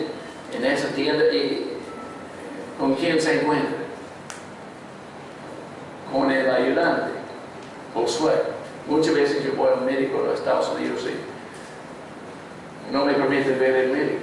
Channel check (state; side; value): identical; both; correlation 1.00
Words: en esa tienda y ¿con quién se encuentran? Con el ayudante, Josué. Muchas veces yo voy al médico de los Estados Unidos y no me permiten ver el médico.